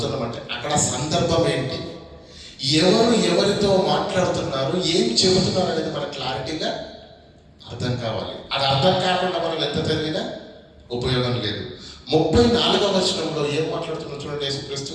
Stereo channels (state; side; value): identical; both; correlation 1.00